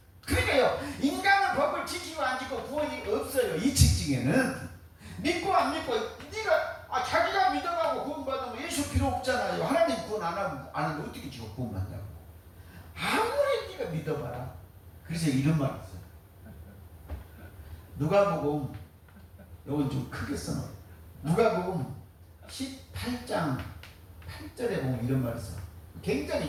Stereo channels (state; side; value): identical; both; correlation 1.00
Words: 그러니까요, 인간은 법을 지키고 안 지키고 구원이 없어요. 이 직징에는 믿고 안 믿고 네가 자기가 믿어가고 구원받으면 예수 필요 없잖아요. 하나님 구원 안 하면 어떻게 지금 구원받냐고. 아무리 네가 믿어봐라. 그래서 이런 말이 있어요. 누가복음 이건 좀 크게 써놔요. 누가복음 18장 8절에 보면 이런 말이 있어요. 굉장히